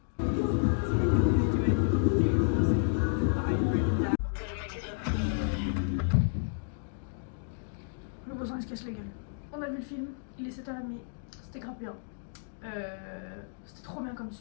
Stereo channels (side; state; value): right; silent; digital silence